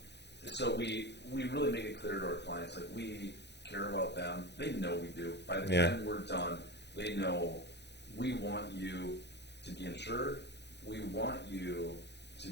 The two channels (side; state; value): right; late; 0.50 ms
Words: So we really make it clear to our clients, like, we care about them. They know we do. By the time we're done, they know we want you to be insured. We want you to